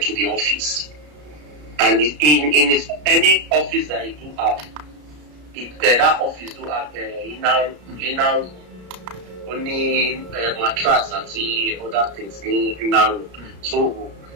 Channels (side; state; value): left; late; 33 ms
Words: the office. And in any office that he do have, that office do have inner only mattress and the other things in inner room. So